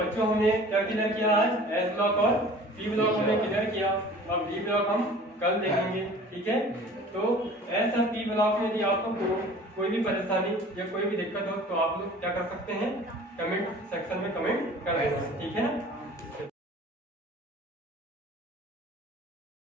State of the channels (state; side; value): normal; both; correlation 0.45